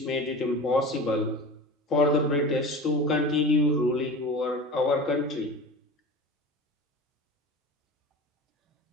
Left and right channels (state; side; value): normal; both; correlation 0.34